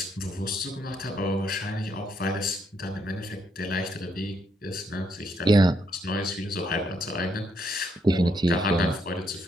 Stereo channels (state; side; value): normal; both; correlation 0.75